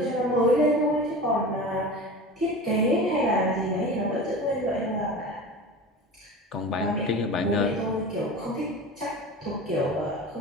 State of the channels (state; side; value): normal; both; correlation 0.33